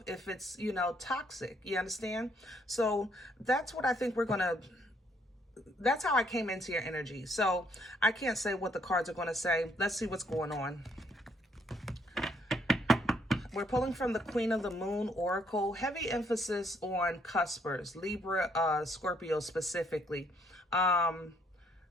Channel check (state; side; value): normal; both; correlation 0.69